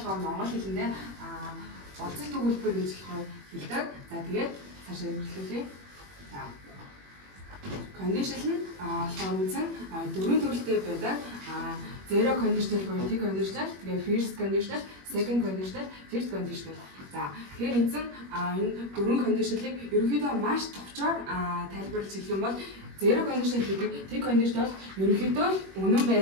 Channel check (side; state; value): left; late; 21 ms